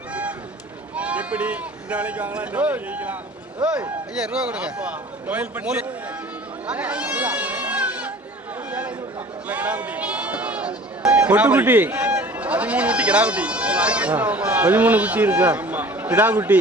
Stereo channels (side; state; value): both; normal; correlation 0.45